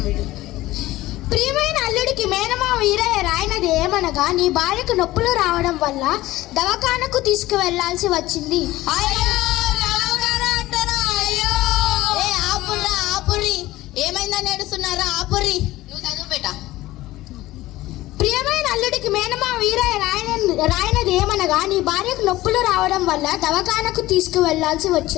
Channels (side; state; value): right; quieter; 17.0 dB